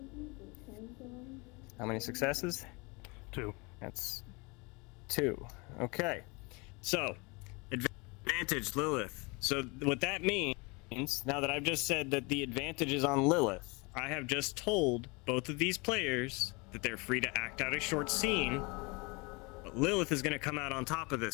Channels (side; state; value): right; quieter; 28.1 dB